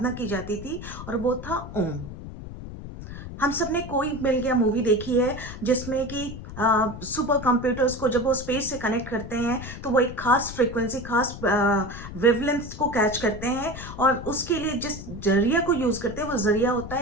की जाती थी, और वो था ओम। हम सब ने कोई मिल गया मूवी देखी है, जिसमें कि सुपर कंप्यूटर्स को जब वो स्पेस से कनेक्ट करते हैं तो वो एक खास फ्रीक्वेंसी, खास वेवलेंथ को कैच करते हैं, और उसके लिए जिस जरिया को यूज करते हैं वो जरिया होता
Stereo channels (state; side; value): noise; left; rumble, 11 dB below the sound